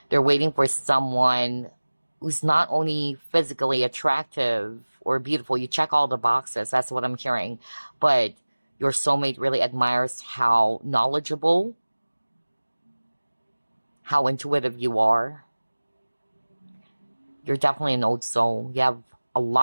They're waiting for someone who's not only physically attractive or beautiful. You check all the boxes. That's what I'm hearing. But your soulmate really admires how knowledgeable, how intuitive you are. You're definitely an old soul. You have a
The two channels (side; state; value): both; inverted; correlation -1.00